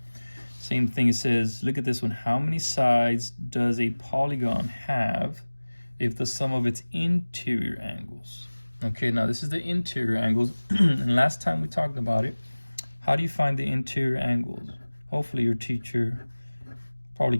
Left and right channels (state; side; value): inverted; both; correlation -1.00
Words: Same thing, it says, look at this one. How many sides does a polygon have if the sum of its interior angles? Okay, now this is the interior angles. And last time we talked about it, how do you find the interior angles? Hopefully your teacher probably